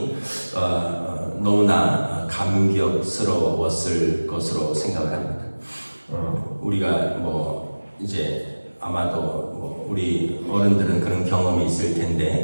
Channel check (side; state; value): both; inverted; correlation -1.00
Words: 너무나 감격스러웠을 것으로 생각을 합니다. 우리가 뭐 이제 아마도 뭐 우리 어른들은 그런 경험이 있을